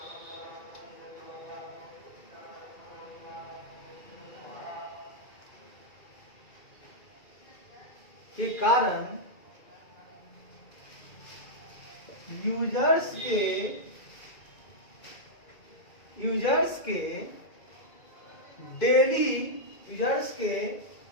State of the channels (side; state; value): right; late; 2.3 ms